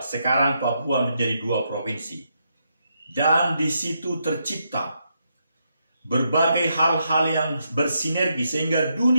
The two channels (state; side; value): inverted; both; correlation -0.80